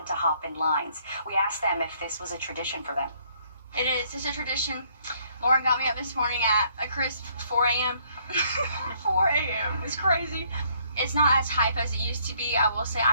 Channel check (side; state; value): both; inverted; correlation -0.66